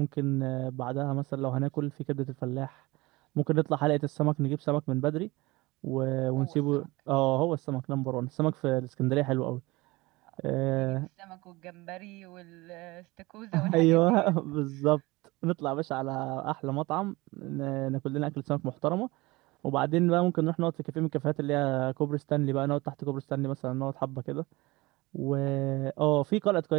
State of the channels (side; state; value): left; quieter; 22.0 dB